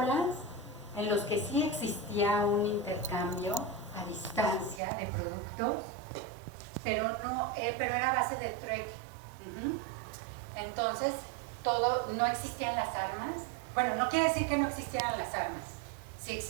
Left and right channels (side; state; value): left; drops out; at 4.8 s